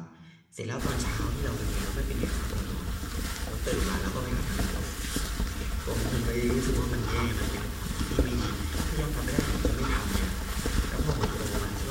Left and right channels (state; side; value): identical; both; correlation 1.00